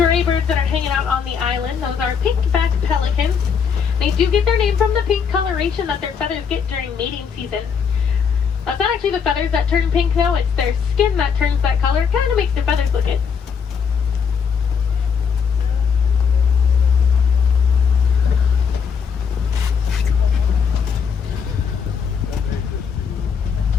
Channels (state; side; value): quieter; right; 6.5 dB